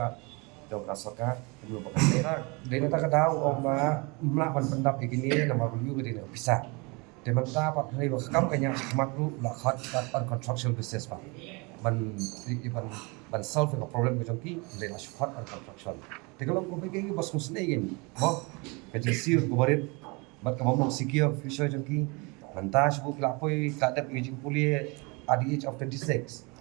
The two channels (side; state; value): left; quieter; 28.6 dB